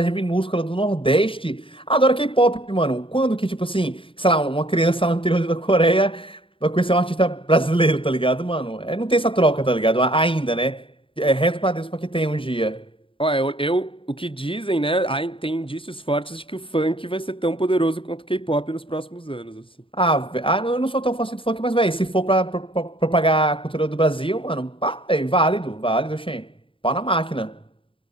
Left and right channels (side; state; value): right; late; 0.25 ms